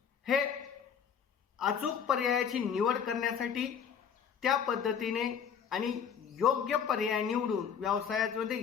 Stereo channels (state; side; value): quieter; right; 7.5 dB